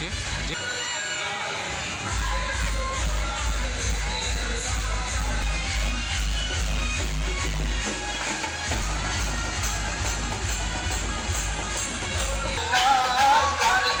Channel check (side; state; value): both; identical; correlation 1.00